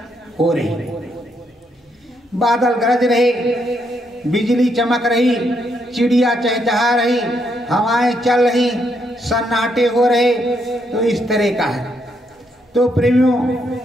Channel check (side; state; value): both; normal; correlation 0.76